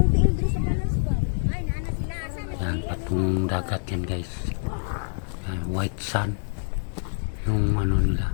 Yan, patong dagat yan guys. Yan, white sand. Yung ano nila,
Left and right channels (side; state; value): right; silent; 61 dB below the other